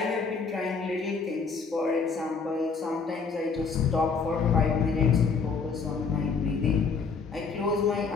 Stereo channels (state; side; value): quieter; right; 5.1 dB